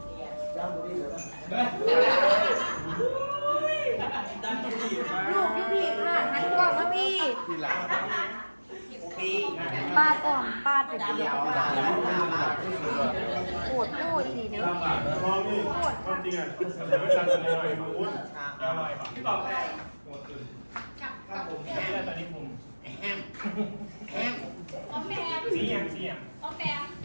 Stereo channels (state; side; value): inverted; both; correlation -1.00